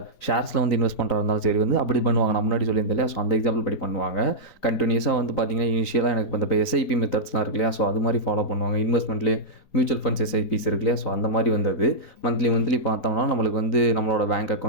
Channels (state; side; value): late; right; 3.9 ms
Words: ஷேர்ஸில் வந்து இன்வெஸ்ட் பண்ணுறதா இருந்தாலும் சரி வந்து அப்படி பண்ணுவாங்க. நான் முன்னாடி சொல்லியிருந்தேன் இல்லையா, ஸோ அந்த எக்ஸாம்பிள் படி பண்ணுவாங்க. கண்டினியூஸாக வந்து பார்த்தீங்கன்னா இனிஷியலாக எனக்கு இப்போ SIP மெத்தட்ஸ்லாம் இருக்கு இல்லையா, ஸோ அது மாதிரி ஃபாலோ பண்ணுவாங்க. இன்வெஸ்ட்மெண்ட்லேயே மியூச்சுவல் ஃபண்ட்ஸ் SIPs இருக்கு இல்லையா, ஸோ அந்த மாதிரி வந்தது. மந்த்லி பார்த்தோம்னா நம்மளுக்கு வந்து நம்மளோட பேங்க்